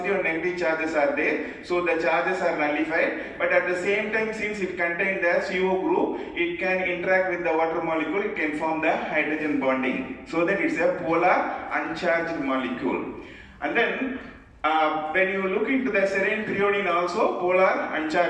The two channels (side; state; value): both; identical; correlation 1.00